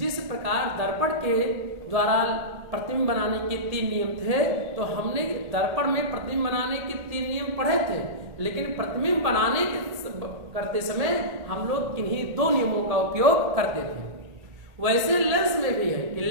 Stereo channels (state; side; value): late; left; 1.8 ms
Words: प्रकार दर्पण के द्वारा प्रतिबिंब बनाने के 3 नियम थे, तो हमने दर्पण में प्रतिबिंब बनाने के 3 नियम पढ़े थे, लेकिन प्रतिबिंब बनाने करते समय हम लोग किन्हीं 2 नियमों का उपयोग करते थे। वैसे लेंस में भी है कि